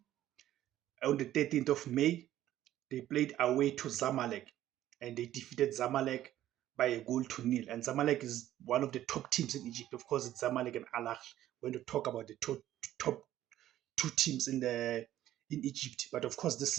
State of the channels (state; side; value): quieter; left; 13.1 dB